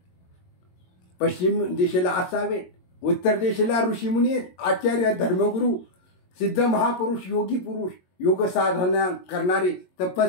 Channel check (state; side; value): late; right; 22 ms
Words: पश्चिम दिशेला असावेत. उत्तर दिशेला ऋषीमुनी आहेत, आचार्य धर्मगुरू, सिद्ध महापुरुष, योगी पुरुष, योग साधना करणारे